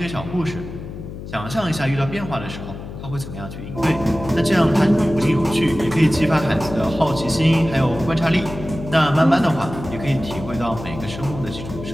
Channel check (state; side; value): noise; left; hum, 11 dB below the sound